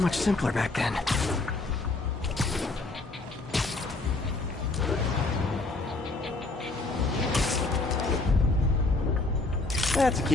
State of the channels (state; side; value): quieter; right; 3.3 dB